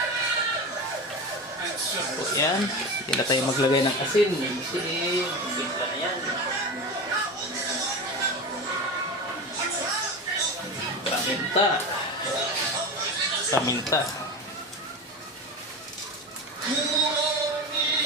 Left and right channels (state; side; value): normal; both; correlation 0.25